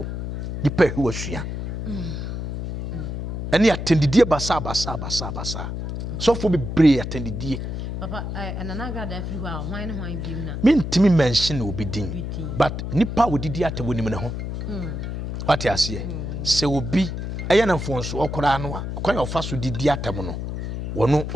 ni pa hu asua ani attendidie basa so for be brave attendidie papa anana ga da free wa hwan ne hwan biem na mentimi mention obi din but nipa wodidi atabo nim ne ho what you say se obi eye na mfonso okora no a kwan ofa so didi atamo no wono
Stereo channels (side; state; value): left; noise; hum, 5 dB below the sound